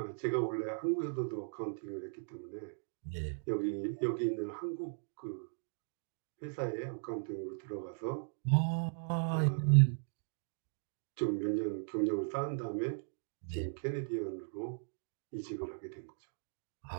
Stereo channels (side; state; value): left; silent; digital silence